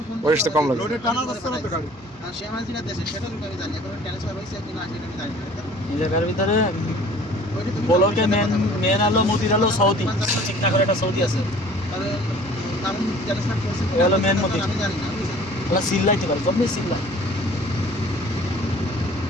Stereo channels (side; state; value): both; normal; correlation 0.50